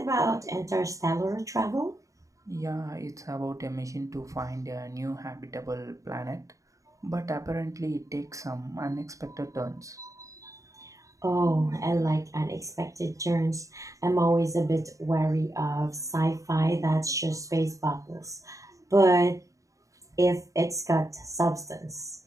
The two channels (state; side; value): late; left; 0.16 ms